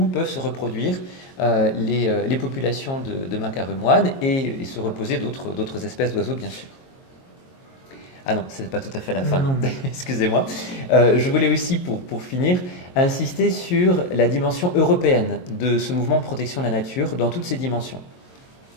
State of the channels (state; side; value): late; right; 22 ms